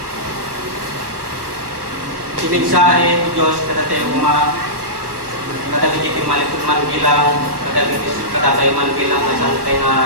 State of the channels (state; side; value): late; left; 1.2 ms